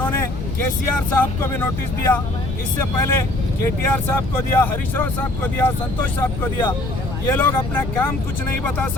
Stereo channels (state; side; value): noise; left; rumble, 5 dB below the sound